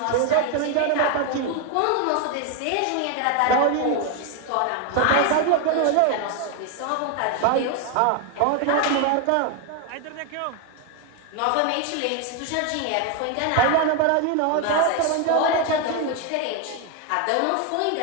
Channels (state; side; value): different; both; correlation 0.01